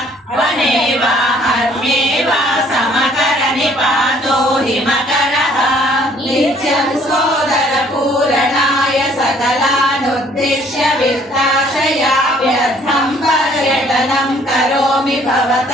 वने वा हर्म्ये वा समकरनि पातो हिमकरः नित्यं सोदरपूरणाय सकलानुद्दिश्य वित्ताशया व्यर्थं पर्यटनं करोमि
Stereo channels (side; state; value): both; normal; correlation 0.60